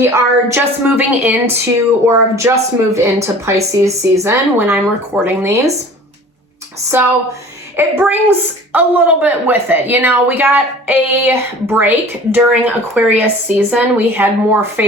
are just moving into, or have just moved into Pisces season when I'm recording these. So it brings a little bit with it. You know, we got a break during Aquarius season. We had more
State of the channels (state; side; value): normal; both; correlation 0.44